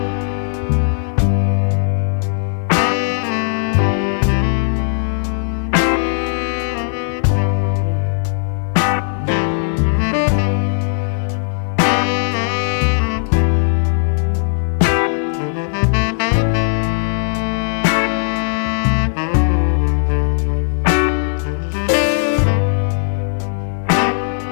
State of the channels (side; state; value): right; silent; digital silence